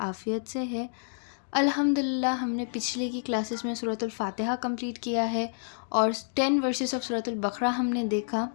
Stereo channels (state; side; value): silent; right; digital silence